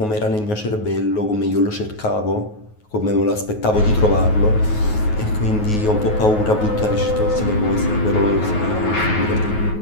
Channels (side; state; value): right; late; 9.4 ms